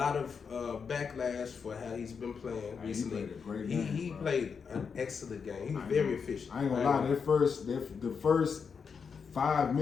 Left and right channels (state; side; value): quieter; right; 6.0 dB